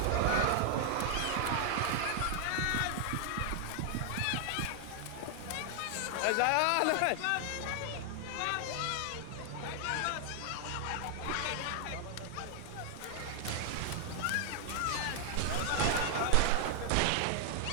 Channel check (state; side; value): different; both; correlation 0.00